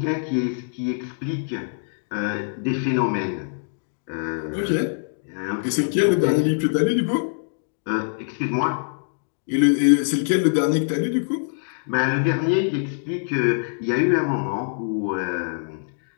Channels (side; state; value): right; silent; digital silence